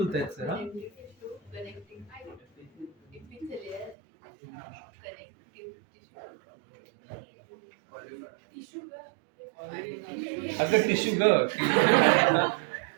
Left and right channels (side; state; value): left; drops out; at 4.0 s